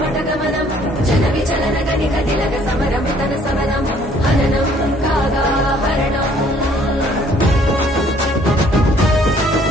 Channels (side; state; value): both; normal; correlation 0.60